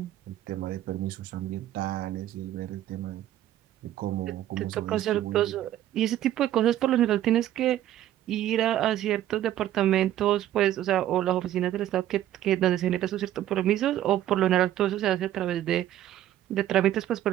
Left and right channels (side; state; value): left; quieter; 12.6 dB